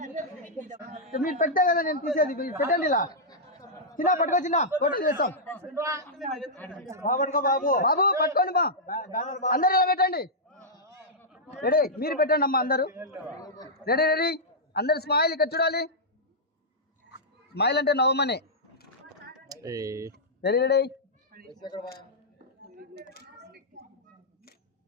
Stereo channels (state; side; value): normal; both; correlation -0.10